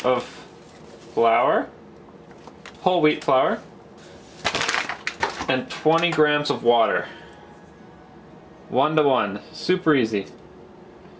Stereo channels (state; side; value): identical; both; correlation 1.00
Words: of flour, whole wheat flour, and 20 grams of water. 1 to 1. Super easy.